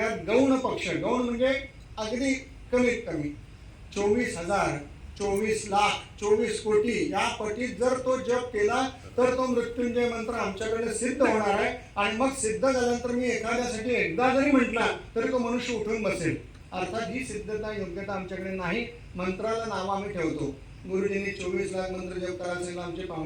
गौण पक्ष, गौण म्हणजे अगदी कमीत कमी 24,000, 24 लाख, 24 कोटी या पटीत जर तो जप केला तर तो मृत्युंजय मंत्र आमच्याकडे सिद्ध होणार आहे. आणि मग सिद्ध झाल्यानंतर मी एखाद्यासाठी एकदा जरी म्हटला तरी तो मनुष्य उठून बसेल. अर्थात ही सिद्धता योग्यता आमच्याकडे नाही. मंत्राला नाव आम्ही ठेवतो. गुरुजींनी 24 लाख मंत्र जप करायला सांगितलं, आमचे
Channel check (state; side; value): identical; both; correlation 1.00